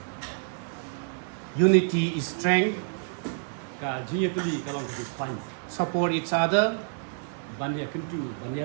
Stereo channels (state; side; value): silent; left; 59 dB below the other